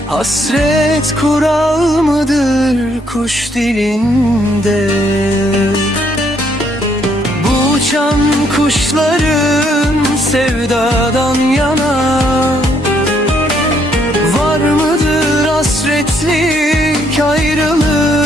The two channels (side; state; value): both; normal; correlation 0.70